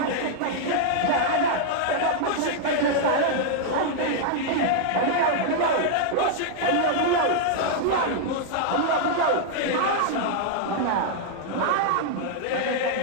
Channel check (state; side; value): different; both; correlation -0.01